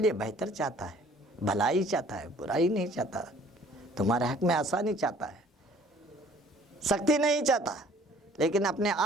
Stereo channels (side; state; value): both; normal; correlation 0.55